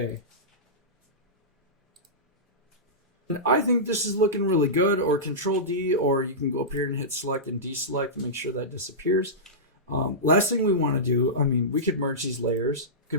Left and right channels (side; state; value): both; normal; correlation -0.16